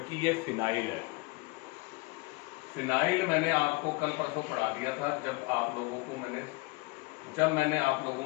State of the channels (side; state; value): right; quieter; 25.1 dB